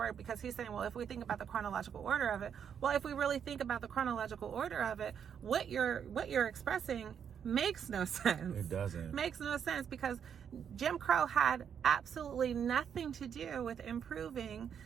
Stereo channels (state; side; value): quieter; left; 8.0 dB